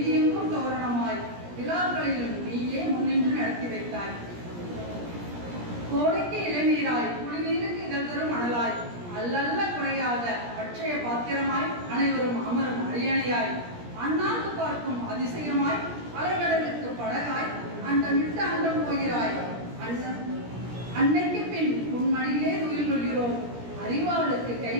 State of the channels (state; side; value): late; left; 17 ms